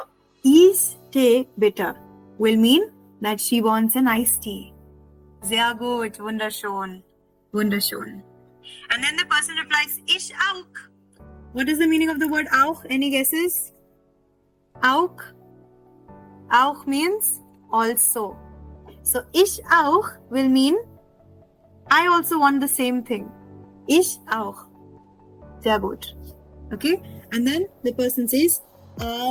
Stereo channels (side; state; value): both; identical; correlation 1.00